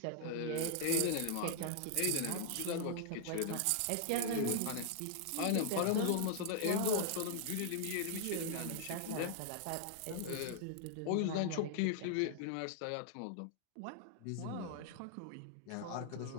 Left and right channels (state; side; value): different; both; correlation -0.01